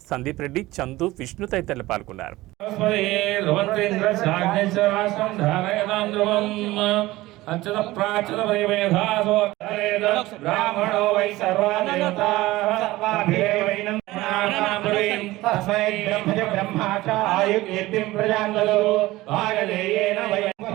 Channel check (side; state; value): left; quieter; 18.3 dB